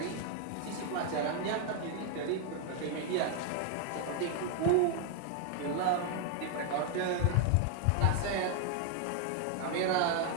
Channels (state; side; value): different; both; correlation 0.00